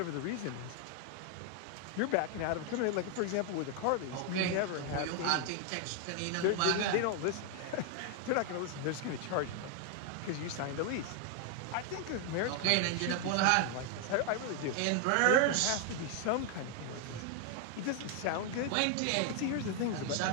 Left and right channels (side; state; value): both; different; correlation 0.00